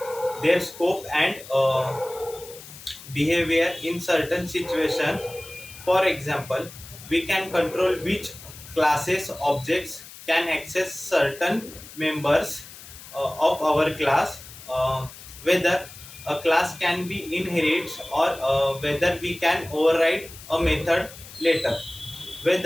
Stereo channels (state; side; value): noise; left; hiss, 17 dB below the sound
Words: their scope and behavior in certain situations. For example, we can control which classes objects can access certain members of our class, whether a class can be inherited or whether we can override a method later,